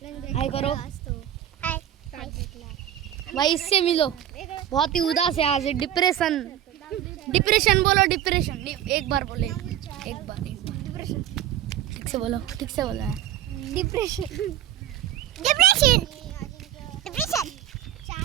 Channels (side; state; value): left; quieter; 11.4 dB